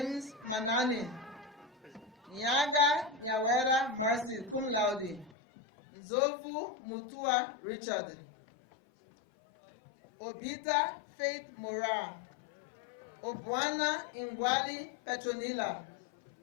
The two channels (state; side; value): drops out; right; at 5.3 s